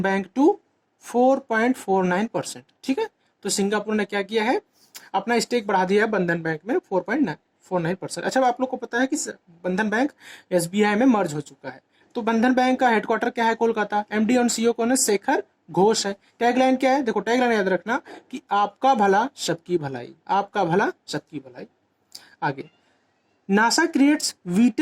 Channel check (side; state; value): both; identical; correlation 1.00